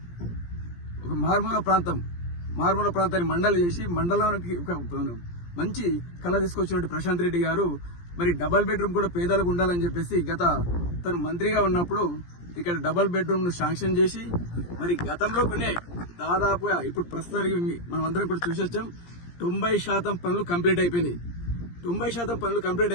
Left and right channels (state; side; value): late; right; 17 ms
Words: ఒక మారుమూల ప్రాంతాన్ని మండలి చేసి మండలానికి ఒక మంచి కళ తీసుకొచ్చినట్టు ప్రశాంత్ రెడ్డి గారు మరి డబల్ బెడ్రూమ్ కూడా పేదలకు ఉండాలని చెప్పేసి గత తను మంత్రిగా ఉన్నప్పుడు ఇక్కడ డబల్ బెడ్రూమ్ ను శాంక్షన్ చేసి మరి గతంలో కొనే దాదాపుగా ఇప్పుడు ప్రస్తుతానికి మనం అందరం కూడా చూసొచ్చాం 90% పనులు కంప్లీట్ అయిపోయినాయి. 90% పనులు కంప్లీట్